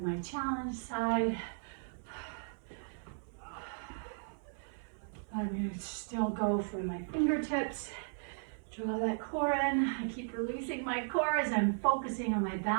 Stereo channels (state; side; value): silent; left; 54 dB below the other